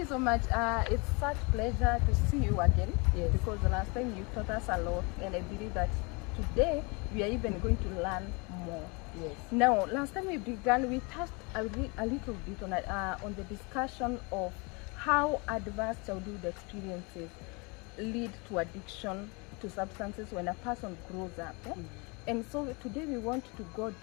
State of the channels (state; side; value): quieter; right; 29.8 dB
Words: so much. It's such pleasure to see you again. Yes. Because the last time you taught us a lot, and I believe that today we are even going to learn more. Yes. Now, last time we began, we touched a little bit on the discussion of how adverse childhood experiences lead to addiction to substances when a person grows up. And so today we want to go